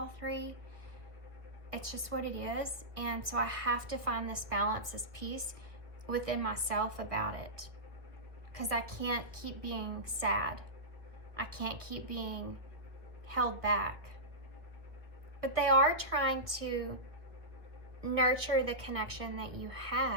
3. It's just what it is. And so I have to find this balance, this peace within myself about it. Because I can't keep being sad. I can't keep being held back. But they are trying to nurture the connection that you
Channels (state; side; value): late; left; 1.2 ms